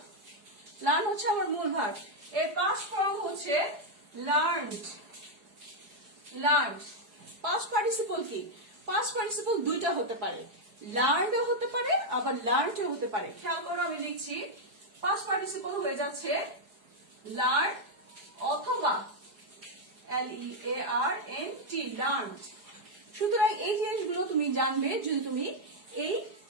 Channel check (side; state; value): left; late; 4.8 ms